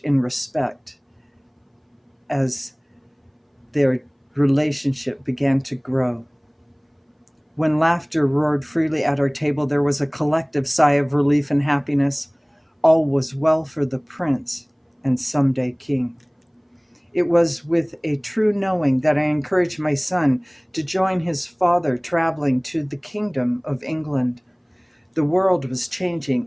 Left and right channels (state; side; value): identical; both; correlation 1.00